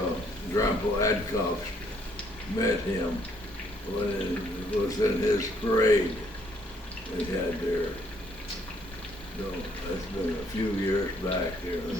Grandpa Adcock met him when it was in his parade they had there. So that's been a few years back there.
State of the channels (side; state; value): both; normal; correlation 0.67